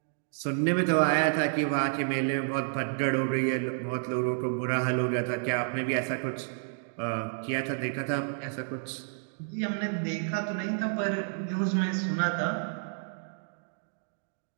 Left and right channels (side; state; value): left; silent; 58 dB below the other